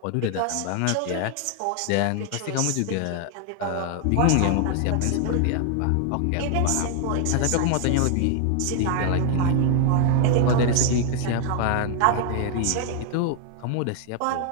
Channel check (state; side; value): different; both; correlation 0.00